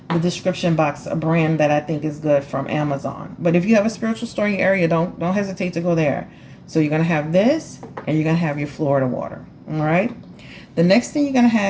the description box a brand that I think is good from Amazon. But if you have a Spiritual Store in your area, don't hesitate to go there. So you're gonna have this, and you're gonna have your Florida water. All right. The next thing you're gonna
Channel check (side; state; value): both; identical; correlation 1.00